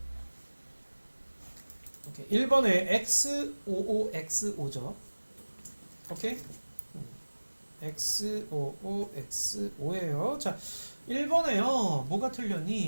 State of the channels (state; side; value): inverted; both; correlation -1.00